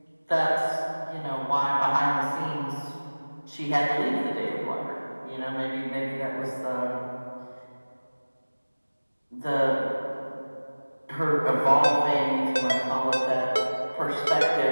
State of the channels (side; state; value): both; inverted; correlation -1.00